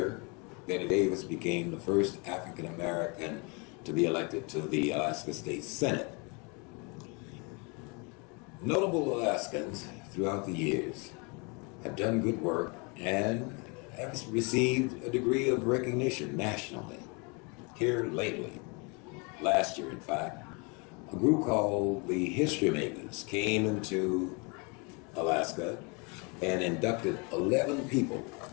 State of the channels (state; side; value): quieter; right; 31.6 dB